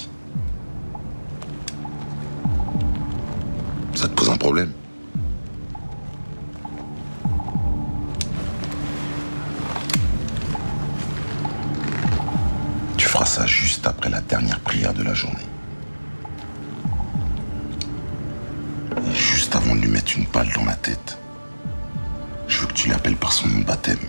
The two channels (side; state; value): both; inverted; correlation -1.00